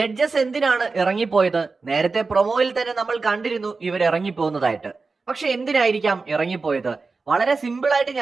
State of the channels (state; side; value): quieter; left; 4.1 dB